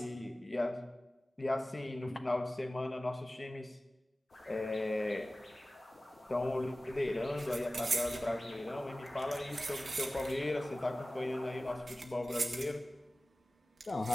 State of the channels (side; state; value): both; normal; correlation 0.96